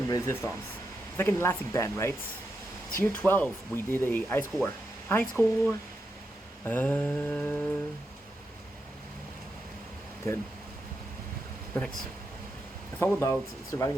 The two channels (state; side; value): normal; both; correlation 0.85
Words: resistance. It's like an elastic band, right? Tier 12, we did a high score. High score! Good. Perfect. It's all about surviving